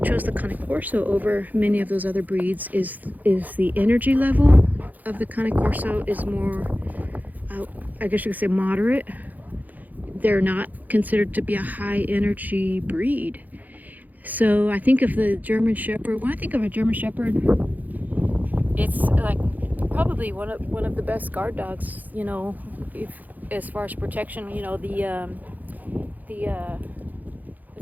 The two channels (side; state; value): left; late; 0.082 ms